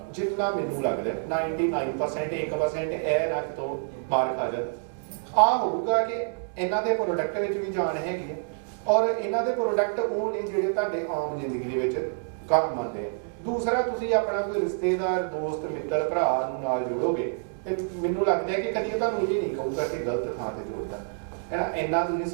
ਜਿੰਨਾ ਮੈਨੂੰ ਲੱਗਦਾ 99% 1% ਇਹ ਰੱਖ ਤੋਂ ਮਾਰ ਖਾ ਜਾ। ਆ ਹੋਊਗਾ ਕਿ ਇਹਨਾਂ ਦੇ ਪ੍ਰੋਡਕਟ ਵਿੱਚ ਵੀ ਜਾਨ ਹੈਗੀ ਹੈ, ਔਰ ਇਹਨਾਂ ਦੇ ਪ੍ਰੋਡਕਟ ਉਹ ਨੇ ਜਿਹੜੇ ਤੁਹਾਡੇ ਆਮ ਜ਼ਿੰਦਗੀ ਦੇ ਵਿੱਚ ਕੰਮ ਆਉਂਦੇ ਆ। ਦੂਸਰਾ, ਤੁਸੀਂ ਆਪਣਾ ਕੋਈ ਰਿਸ਼ਤੇਦਾਰ, ਦੋਸਤ, ਮਿੱਤਰ, ਭਰਾ ਨੂੰ ਨਾਲ ਜੋੜੋਗੇ ਤੇ ਮੈਨੂੰ ਲੱਗਦਾ ਹੈ ਕਿ ਕਦੀ ਤੁਹਾਨੂੰ ਇਹ ਨਹੀਂ ਕਹੂਗਾ ਕਿ ਗਲਤ ਥਾਂ ਤੇ ਜੋੜਦਾ ਹੈ। ਇੰਨਾ ਤੁਸੀਂ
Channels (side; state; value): left; silent; digital silence